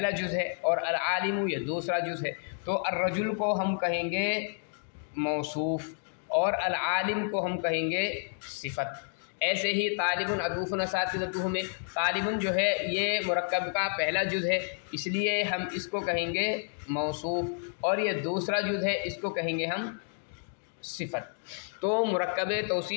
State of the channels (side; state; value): right; silent; 58 dB below the other